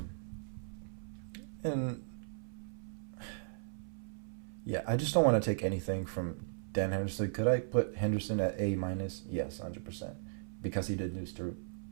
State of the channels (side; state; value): left; silent; 53 dB below the other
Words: And yeah, I just don't want to take anything from Dan Henderson. Could I put Henderson at A minus? Yes, 100%, because he did lose to